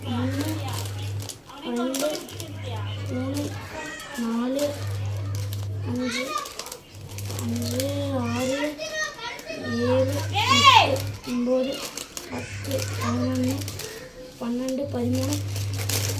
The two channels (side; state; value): both; identical; correlation 1.00